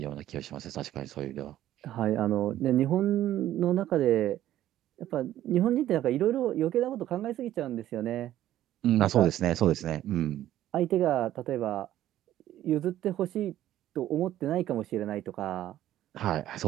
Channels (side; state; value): left; quieter; 13.0 dB